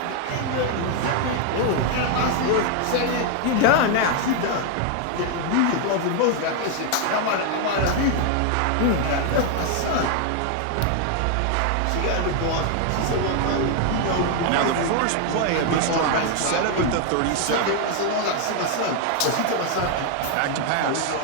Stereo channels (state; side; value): different; both; correlation 0.00